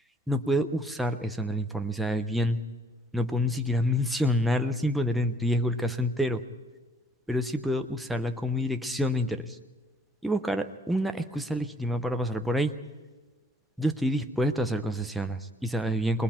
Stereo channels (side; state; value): both; normal; correlation 0.63